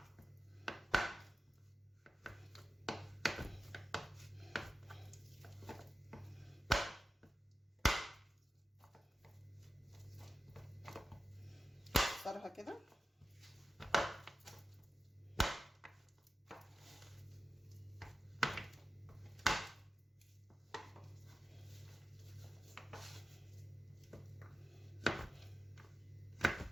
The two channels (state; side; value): normal; both; correlation 0.93